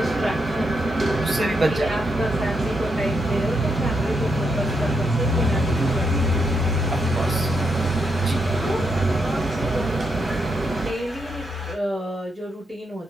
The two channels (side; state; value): both; normal; correlation 0.80